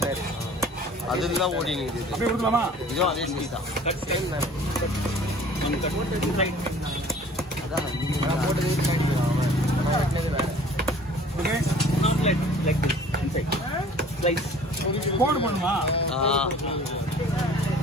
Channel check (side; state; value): both; normal; correlation 0.49